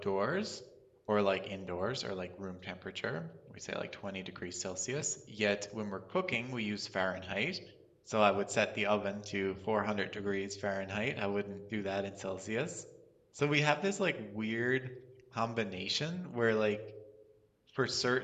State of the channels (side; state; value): both; identical; correlation 1.00